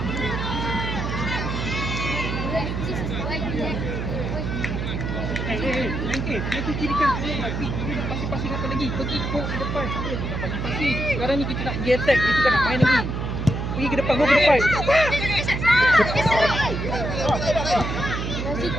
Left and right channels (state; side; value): noise; right; hum, 3 dB below the sound